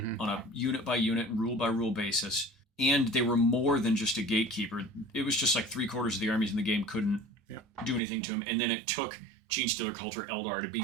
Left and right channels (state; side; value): drops out; left; at 8.0 s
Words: a unit-by-unit, rule-by-rule basis, and they were more than just a gatekeeper. It was just like 3/4 of the armies in the game couldn't do anything to them, and then it took Gene Stealer Cult or Eldar to